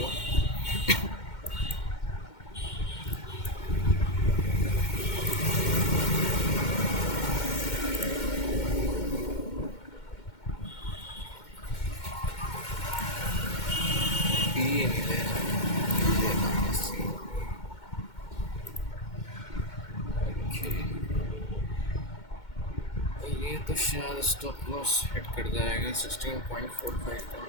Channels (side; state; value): right; late; 2.1 ms